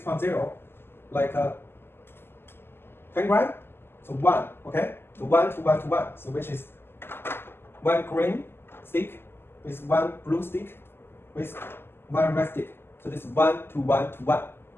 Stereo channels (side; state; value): right; late; 0.11 ms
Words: like 10 gram. So 1. Okay, so 1 to 1 to 1. So which is 1 green stick with 1 blue stick with 1 red stick. So this is 1 to 1 to 1.